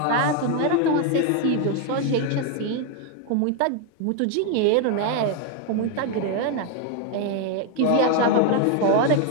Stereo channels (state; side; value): different; both; correlation 0.01